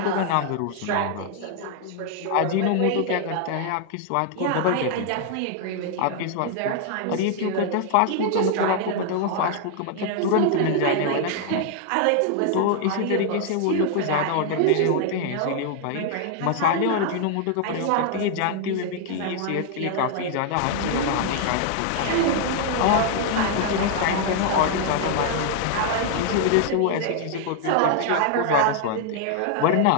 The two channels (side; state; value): both; different; correlation 0.00